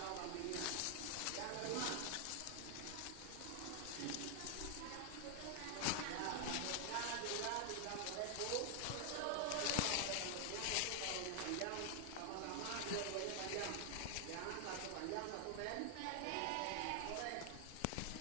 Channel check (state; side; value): different; both; correlation 0.00